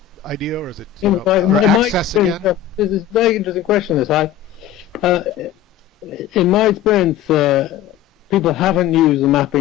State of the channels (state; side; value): quieter; right; 10.5 dB